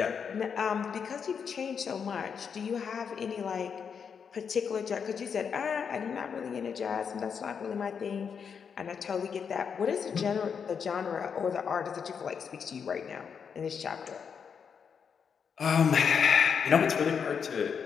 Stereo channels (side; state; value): right; quieter; 6.7 dB